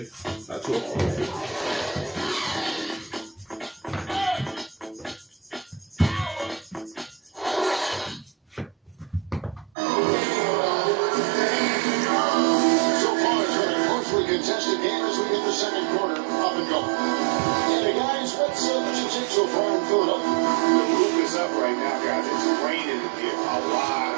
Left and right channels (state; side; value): drops out; left; at 9.7 s